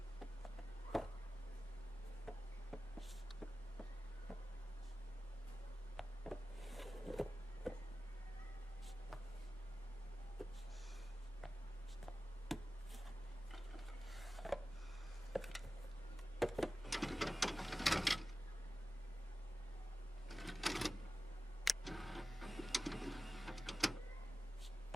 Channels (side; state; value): both; normal; correlation 0.95